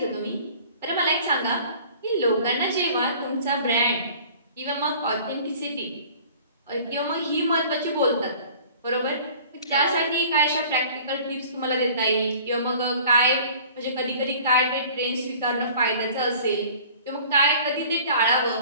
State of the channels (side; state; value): both; inverted; correlation -0.48